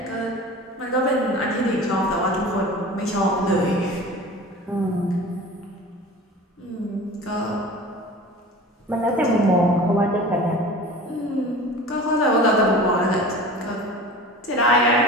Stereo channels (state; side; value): normal; both; correlation 0.38